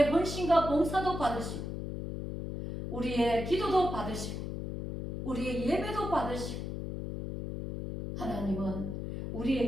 헌신과 봉사도 받으시고 우리의 기도도 받으시고 우리의 예배도 받으시고 하나님은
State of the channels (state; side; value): noise; left; hum, 5 dB below the sound